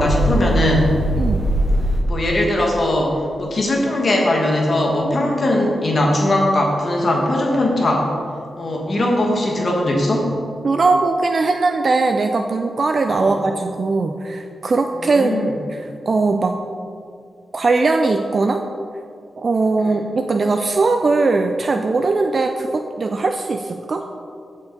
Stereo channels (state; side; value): normal; both; correlation 0.88